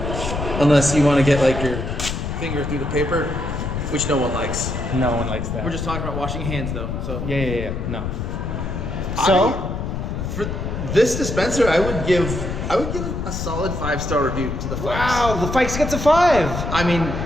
unless you want to get like your finger through the paper, which no one likes. No one likes that. We're just talking about washing hands though. So Yeah. No. So for this dispenser, I would give a solid 5-star review to the Fikes. wow, the Fikes gets a 5. I mean,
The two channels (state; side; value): noise; left; rumble, 4 dB below the sound